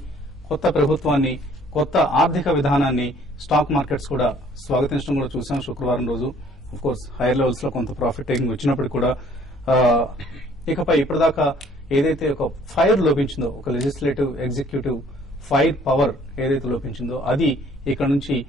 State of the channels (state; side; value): normal; both; correlation 0.58